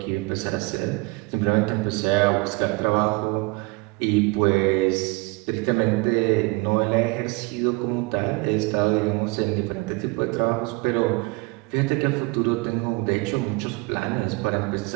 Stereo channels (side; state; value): left; quieter; 26.6 dB